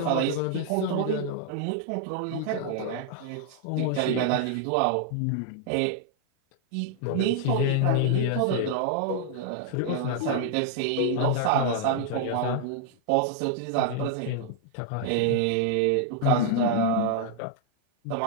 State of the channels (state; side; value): different; both; correlation -0.01